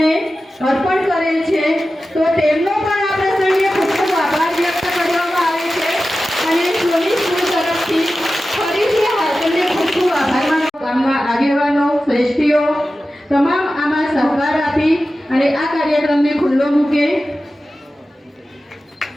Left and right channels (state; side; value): normal; both; correlation 0.94